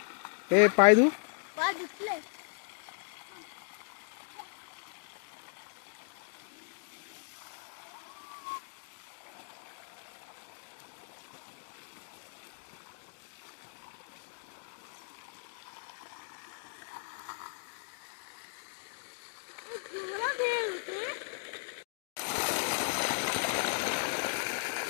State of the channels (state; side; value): silent; right; digital silence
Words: ए पाय दू पाय दुखले